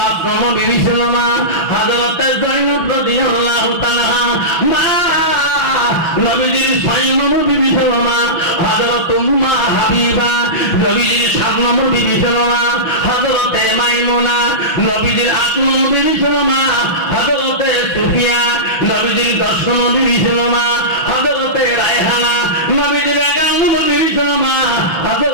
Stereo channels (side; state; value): right; late; 6.0 ms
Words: নম্বর বিবি ছিল মা হযরতে যায়েনব রাদিয়াল্লাহু তাআলা। মা নবীজির ৬ নম্বর বিবি ছিল মা হযরত উম্মে হাবিবা। নবীজির ৭ নম্বর বিবি ছিল মা হযরতে মাইমুনা। নবীজির ৮ নম্বর বিবি ছিল মা হযরতে সুফিয়া। নবীজির ১০ নম্বর বিবি ছিল মা হযরতে রায়হানা। নবীজির ১১ নম্বর বিবি ছিল মা